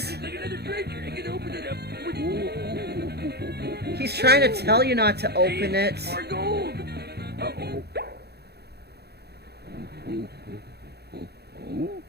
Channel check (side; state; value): left; late; 0.47 ms